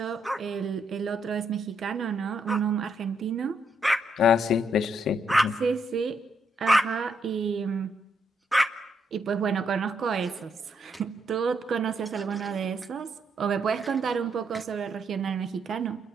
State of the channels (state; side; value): normal; both; correlation 0.76